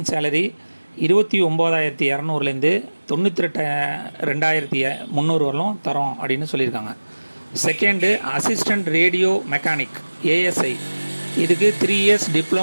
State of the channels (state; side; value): inverted; both; correlation -1.00